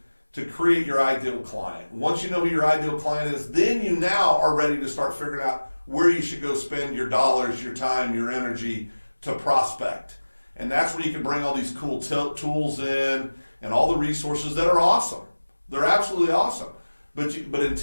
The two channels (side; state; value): both; inverted; correlation -1.00